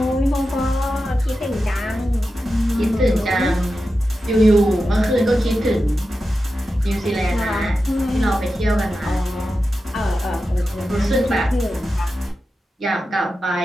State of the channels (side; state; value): both; normal; correlation 0.91